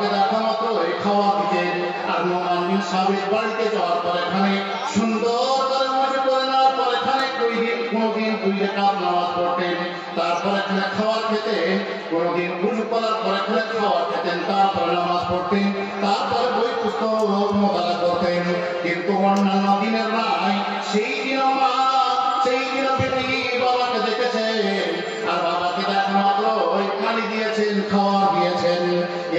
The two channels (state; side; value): identical; both; correlation 1.00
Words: দেখা মাত্রই খাওয়া দিতেন। আর নোমান বিন সাবেত বাড়িতে যাওয়ার পর এখানে সুন্দর করে ওযু করে নেওয়ার পর এখানে কোনদিন 2 রাকাত নামাজ পড়তেন, তারপর এখানে খাবার খেতেন, কোনদিন ওযু করার পর এখানে খাবার খেতেন, তারপরে নামাজ পড়তেন, তারপরে বই পুস্তক মোতালা করতেন। কিন্তু অন্যান্য দিনের নাই, সেই দিন বেটি বাবাকে দেখেছেন, আর বাবাকে দেখা মাত্র ওই পানি দিয়েছেন, খাবার দিয়েছেন।